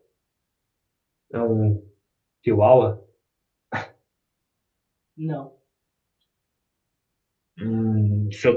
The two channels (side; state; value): both; identical; correlation 1.00